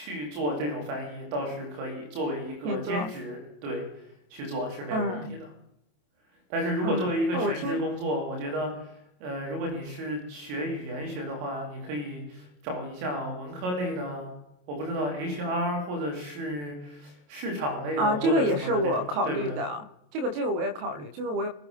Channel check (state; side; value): late; left; 27 ms